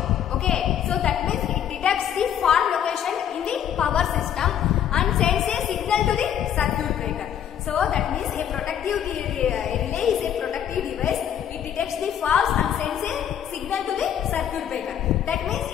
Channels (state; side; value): quieter; right; 9.7 dB